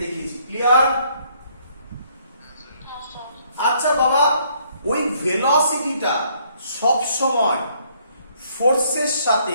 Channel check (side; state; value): both; inverted; correlation -0.66